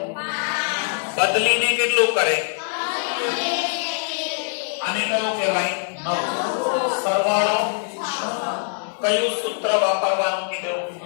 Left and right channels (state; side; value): silent; right; digital silence